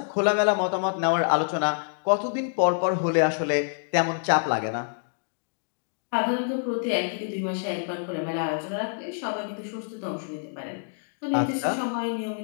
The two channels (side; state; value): right; silent; digital silence